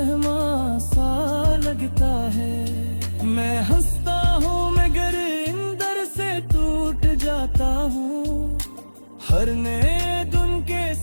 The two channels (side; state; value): both; inverted; correlation -1.00